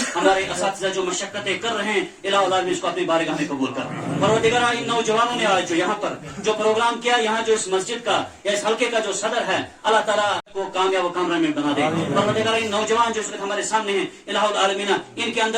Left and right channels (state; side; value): identical; both; correlation 1.00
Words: ہمارے اساتذہ جو مشقتیں کر رہے ہیں الہ العالمین اس کو اپنی بارگاہ میں قبول کر. پروردگارہ ان نوجوانوں نے آج جو یہاں پر جو پروگرام کیا یہاں جو اس مسجد کا یا اس حلقے کا جو صدر ہے اللہ تعالیٰ کو کامیاب و کامران بنا دے. پروردگارہ ان نوجوان جو اس وقت ہمارے سامنے ہیں الہ العالمین ان کے